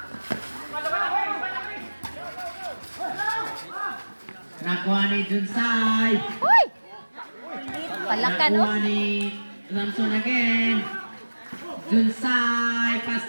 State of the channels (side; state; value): both; inverted; correlation -1.00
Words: Nakuha ni Junsay. Uy! Palakan, Nakuha oh. ni Samson again. Junsay.